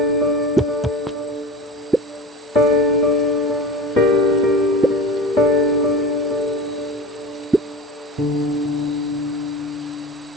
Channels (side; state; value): both; normal; correlation 0.31